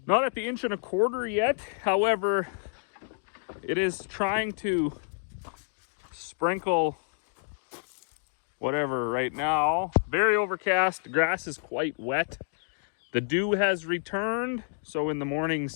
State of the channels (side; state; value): right; silent; digital silence